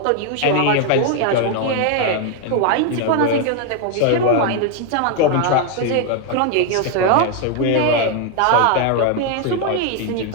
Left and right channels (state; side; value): different; both; correlation 0.01